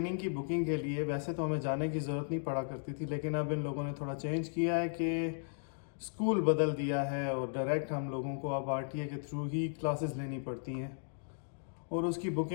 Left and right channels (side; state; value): right; silent; digital silence